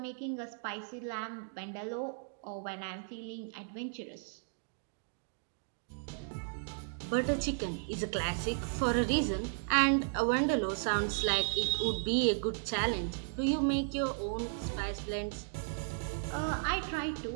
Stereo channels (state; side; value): silent; left; digital silence